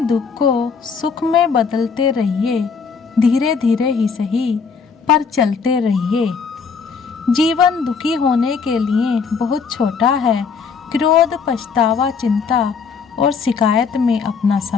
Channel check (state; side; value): quieter; right; 5.6 dB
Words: को सुख में बदलते रहिए, धीरे धीरे ही सही, पर चलते रहिए। जीवन दुखी होने के लिए बहुत छोटा है। क्रोध, पछतावा, चिंता और शिकायत में अपना